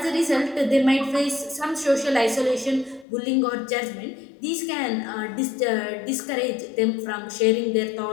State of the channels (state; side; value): drops out; right; at 3.1 s